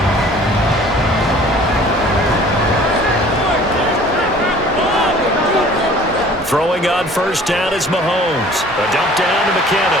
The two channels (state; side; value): normal; both; correlation 0.50